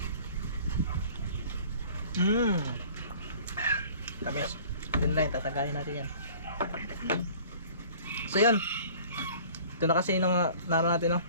Tamis. Yun lang, tatagalin natin yan. So yun. Ito na kasi nung naroon natin, no?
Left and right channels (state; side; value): inverted; both; correlation -0.48